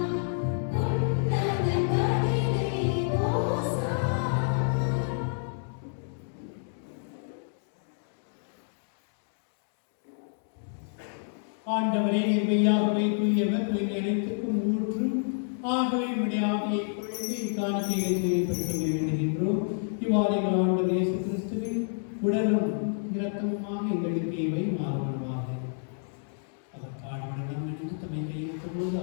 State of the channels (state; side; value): silent; right; digital silence